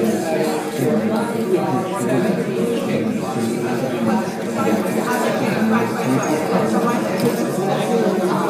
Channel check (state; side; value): identical; both; correlation 1.00